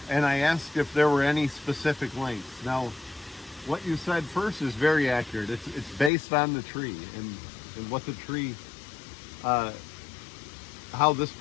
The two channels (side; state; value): right; drops out; at 6.1 s